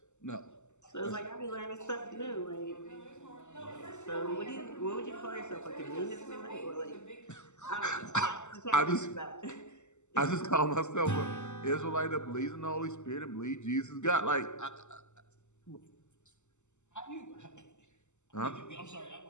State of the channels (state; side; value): late; right; 0.83 ms